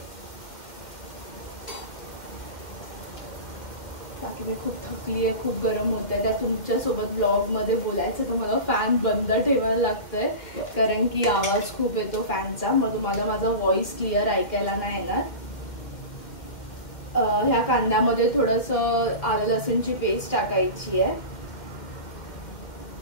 बाकी मी खूप थकली आहे, खूप गरम होतंय. त्या तुमच्यासोबत ब्लॉगमध्ये बोलायचं तर मला फॅन बंद ठेवायला लागतंय कारण की आवाज खूप येतो फॅनचा. मग तुम्हाला माझा व्हॉइस क्लिअर ऐकायला नाही येणार. ह्या कांद्यामध्ये थोडंसं आलं लसूणची पेस्ट टाकायची आहे.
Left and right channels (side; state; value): right; late; 1.9 ms